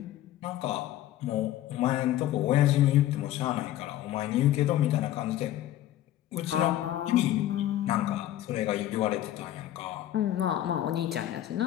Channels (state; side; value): quieter; right; 13.2 dB